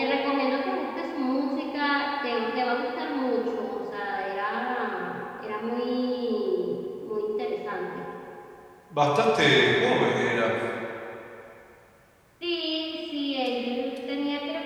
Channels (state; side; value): identical; both; correlation 1.00